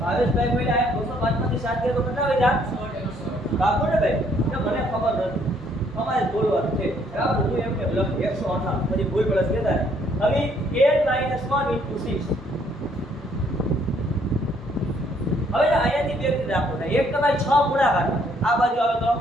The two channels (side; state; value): both; normal; correlation 0.66